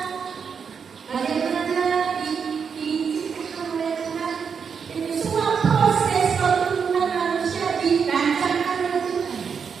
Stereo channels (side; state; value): left; quieter; 6.4 dB